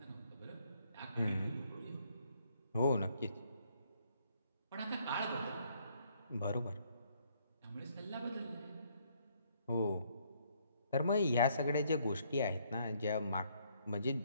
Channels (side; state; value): both; inverted; correlation -0.68